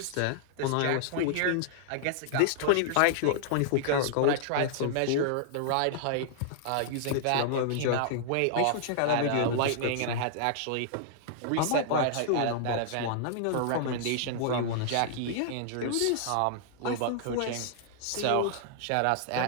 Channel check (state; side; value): different; both; correlation -0.01